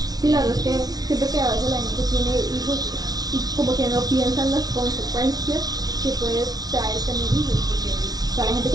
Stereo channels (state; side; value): late; left; 0.19 ms